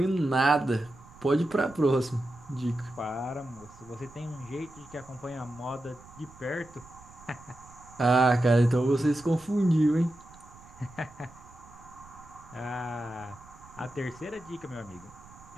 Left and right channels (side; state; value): right; noise; rumble, 22 dB below the sound